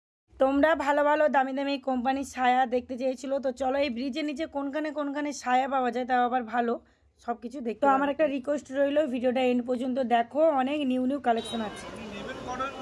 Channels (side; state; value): both; identical; correlation 1.00